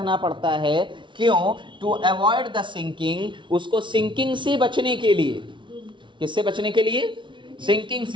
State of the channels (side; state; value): left; late; 0.24 ms